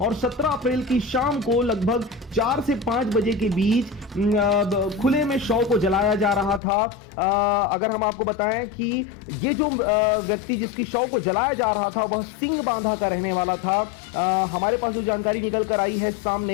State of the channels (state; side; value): drops out; right; at 6.6 s